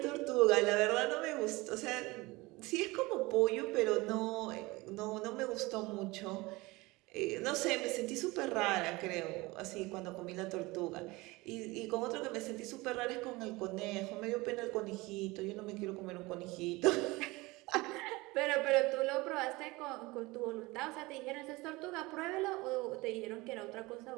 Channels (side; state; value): left; quieter; 22.3 dB